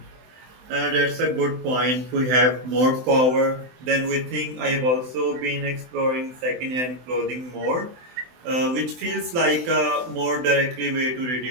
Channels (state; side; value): late; left; 24 ms